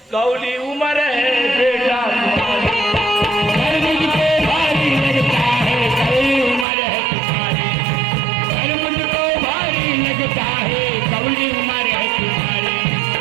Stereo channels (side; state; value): left; drops out; at 6.7 s